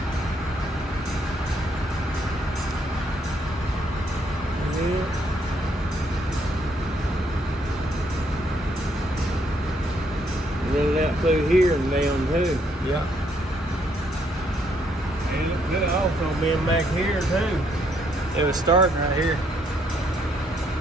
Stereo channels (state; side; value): normal; both; correlation 0.71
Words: Run it out through here and down too. Yeah. And it could also been back here too. It was starting right here.